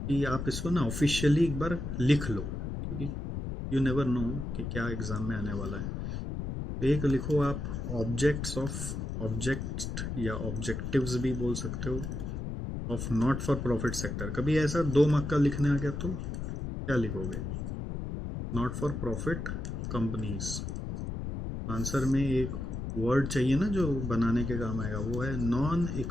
कि आप इसको ना ऑफिशियली एक बार लिख लो, क्योंकि यू नेवर नो कि क्या एग्जाम में आने वाला है। एक लिखो आप ऑब्जेक्ट्स ऑफ, ऑब्जेक्ट या ऑब्जेक्टिव्स भी बोल सकते हो, of not for profit sector. कभी ऐसा 2 मार्क का लिखने आ गया तो क्या लिखोगे, not for profit companies. Answer में एक वर्ड चाहिए ना जो बनाने के काम आएगा, वो है non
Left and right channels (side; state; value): left; noise; rumble, 4 dB below the sound